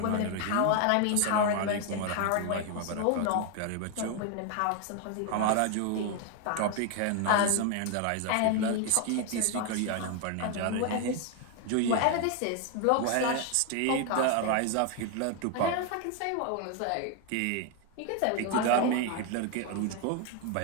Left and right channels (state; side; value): different; both; correlation 0.01